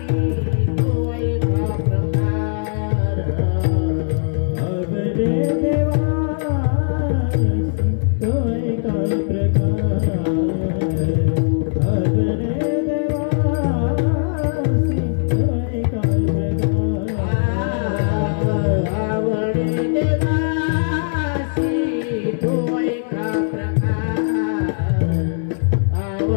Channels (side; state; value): right; silent; digital silence